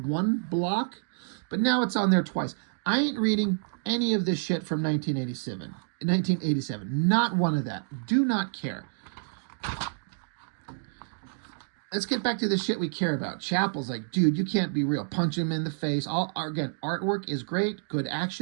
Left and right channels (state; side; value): silent; left; digital silence